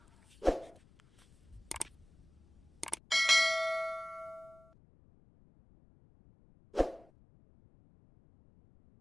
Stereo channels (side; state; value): left; noise; rumble, 28 dB below the sound